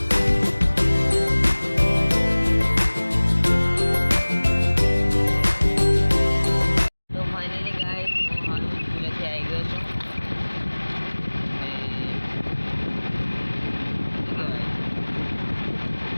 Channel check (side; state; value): both; inverted; correlation -1.00